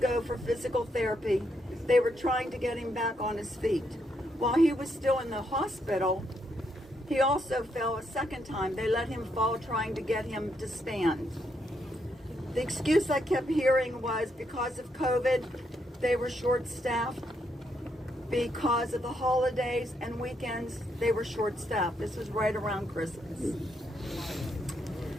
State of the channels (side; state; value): both; normal; correlation 0.77